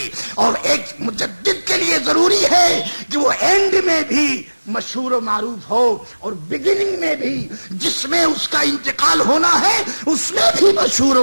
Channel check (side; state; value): both; inverted; correlation -1.00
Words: اور ایک مجدد کے لیے ضروری ہے کہ وہ اینڈ میں بھی مشہور و معروف ہو، اور بگننگ میں بھی جس میں اس کا انتقال ہونا ہے اس میں بھی مشہور